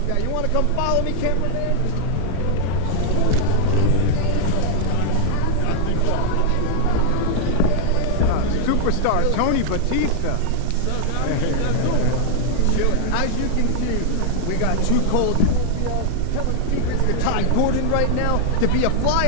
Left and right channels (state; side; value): different; both; correlation -0.01